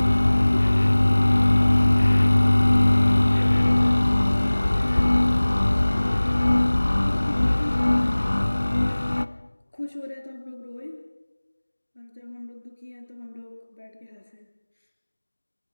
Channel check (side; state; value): both; inverted; correlation -1.00